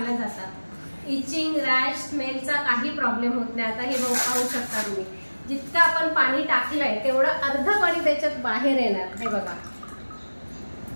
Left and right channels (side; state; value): both; inverted; correlation -1.00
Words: जातात. इचिंग, रॅश, स्मेलचा काही प्रॉब्लेम होत नाही. आता हे पाहू शकता तुम्ही, जितकं आपण पाणी टाकलंय तेवढं अर्ध पाणी त्याच्यात बाहेर येणार. हे बघा.